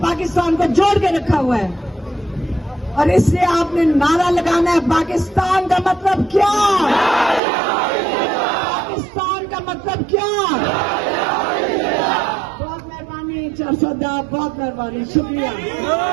پاکستان کو جوڑ کے رکھا ہوا ہے. اور اس سے آپ نے نعرہ لگانا ہے, پاکستان کا مطلب کیا, پاکستان کا مطلب کیا. بہت مہربانی 400 بہت مہربانی, شکریہ.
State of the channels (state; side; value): drops out; left; at 7.4 s